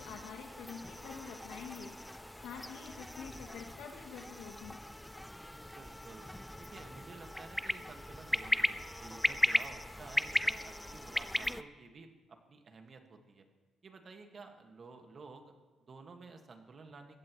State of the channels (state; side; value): normal; both; correlation 0.98